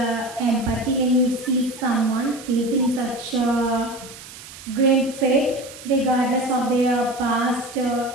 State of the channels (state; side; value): noise; right; hiss, 16 dB below the sound